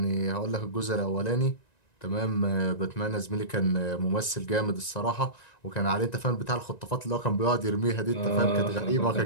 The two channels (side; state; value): right; late; 1.9 ms